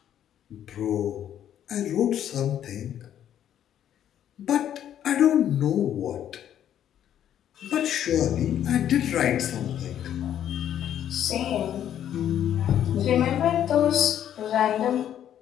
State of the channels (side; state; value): right; quieter; 10.4 dB